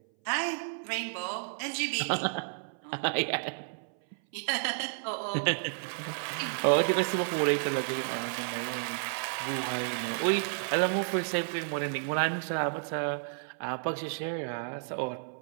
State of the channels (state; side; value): silent; left; 57 dB below the other